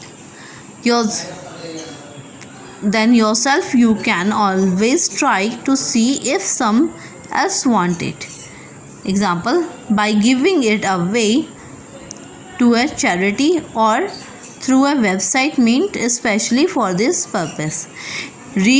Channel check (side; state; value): both; identical; correlation 1.00